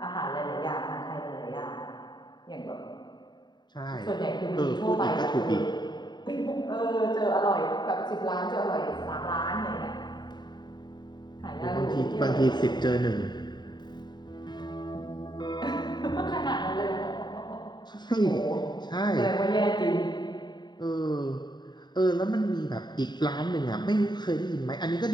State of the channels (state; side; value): late; right; 0.21 ms